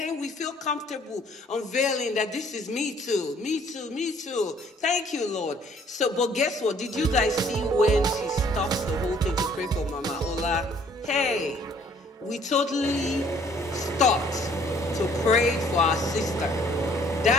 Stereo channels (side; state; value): both; normal; correlation 0.60